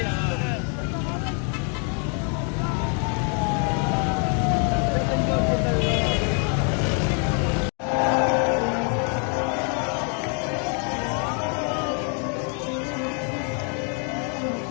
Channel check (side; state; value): right; quieter; 39.4 dB